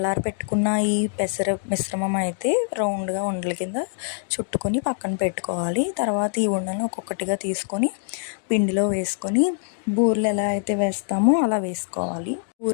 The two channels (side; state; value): right; silent; digital silence